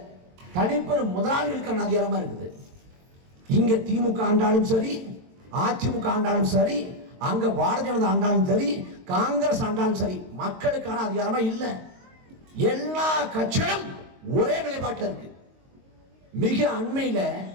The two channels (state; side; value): late; left; 22 ms